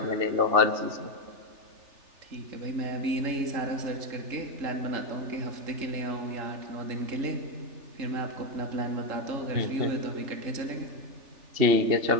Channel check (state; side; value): late; left; 3.4 ms